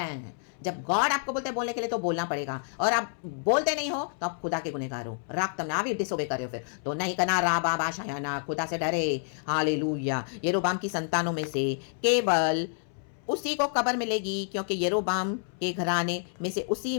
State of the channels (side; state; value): right; silent; 59 dB below the other